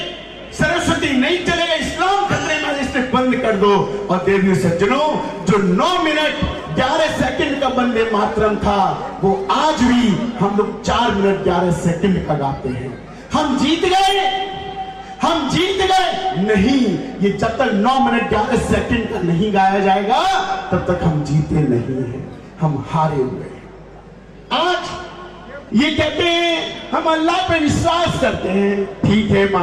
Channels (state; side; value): identical; both; correlation 1.00